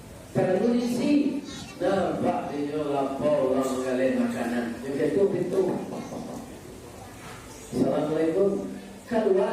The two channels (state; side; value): identical; both; correlation 1.00